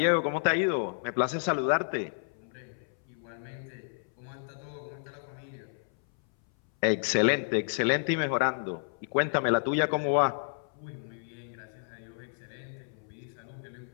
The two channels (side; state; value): right; silent; 57 dB below the other